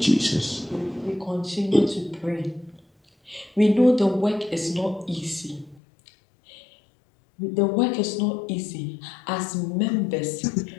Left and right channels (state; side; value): drops out; right; at 5.8 s